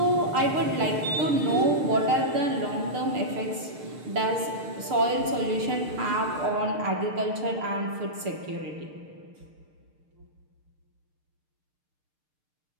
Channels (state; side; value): late; left; 6.6 ms